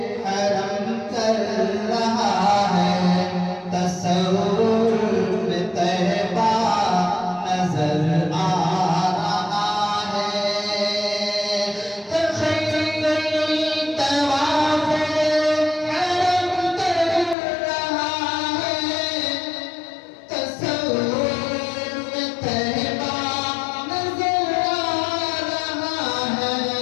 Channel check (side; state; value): right; drops out; at 17.4 s